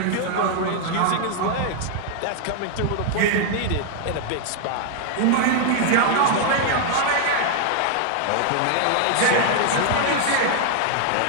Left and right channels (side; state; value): both; different; correlation 0.00